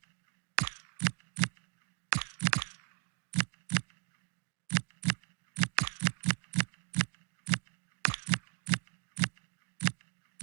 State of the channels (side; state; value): left; silent; 53 dB below the other